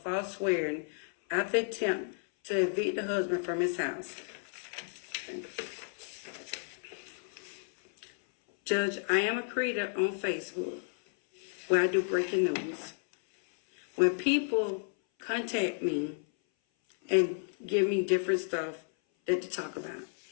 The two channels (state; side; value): silent; right; 56 dB below the other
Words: swearing after attempt to evict the husband from his house. Judge, I am a creator on Facebook where I do breaking news. When people contact me and give me different stuff that to talk about,